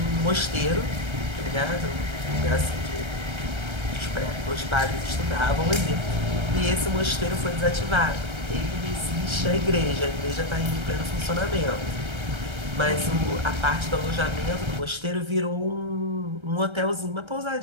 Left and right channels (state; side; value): late; left; 1.3 ms